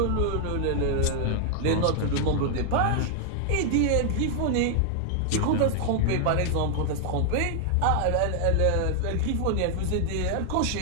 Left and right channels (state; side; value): different; both; correlation 0.00